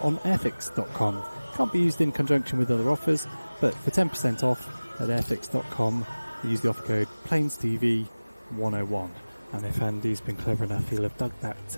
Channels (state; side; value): inverted; both; correlation -1.00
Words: on airfix.com. Can't be used in conjunction with other offers, but for 10% off at airfix.com, use the offer code PlanesTV101. And if Andy's been clever enough, he'll have dug that